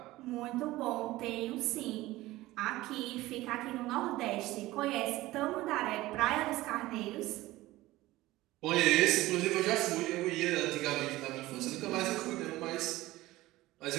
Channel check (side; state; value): left; quieter; 17.7 dB